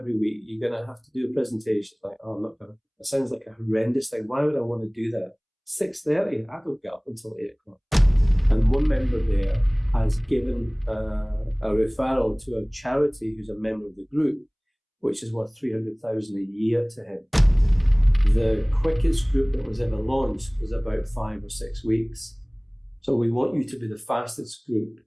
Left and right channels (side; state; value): both; identical; correlation 1.00